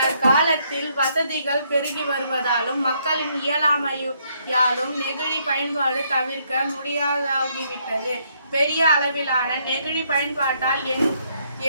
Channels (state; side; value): inverted; both; correlation -0.72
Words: வசதிகள் பெருகி வருவதாலும் மக்களின் இயலாமையாலும் நெகிழி பயன்பாடு தவிர்க்க முடியாதாகிவிட்டது. பெரிய அளவிலான நெகிழி பயன்பாட்டால்